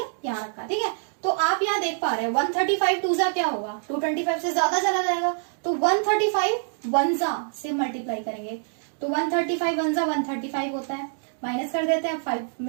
यहाँ रखा, ठीक है। तो आप यहाँ देख पा रहे हैं 135 टूजा क्या होगा, 225 से ज्यादा चला जाएगा, तो 135 वनजा से मल्टीप्लाई करेंगे। तो 135 वनजा 135 होता है, माइनस कर देते हैं, 5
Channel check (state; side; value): silent; left; digital silence